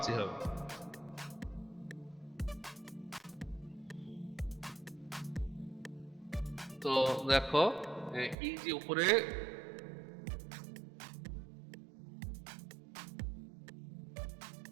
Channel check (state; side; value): drops out; left; at 8.3 s